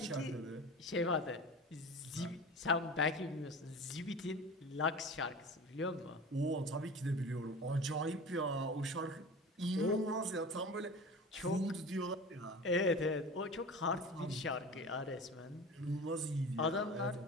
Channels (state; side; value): normal; both; correlation 0.34